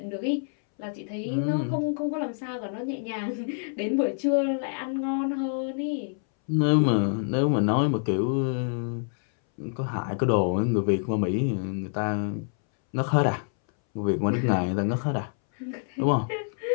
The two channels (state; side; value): silent; right; 60 dB below the other